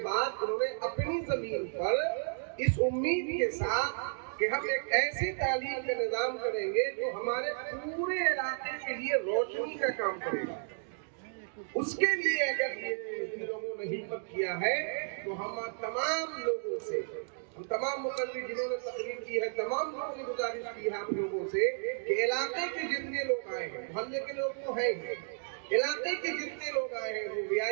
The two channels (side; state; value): left; silent; digital silence